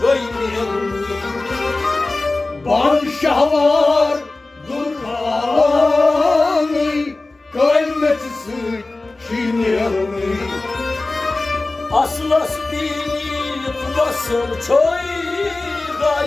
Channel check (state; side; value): quieter; right; 3.2 dB